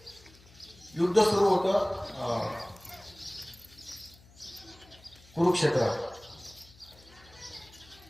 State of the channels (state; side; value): noise; left; hum, 25 dB below the sound